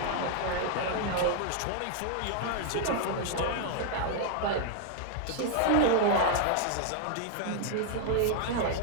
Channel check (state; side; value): different; both; correlation 0.00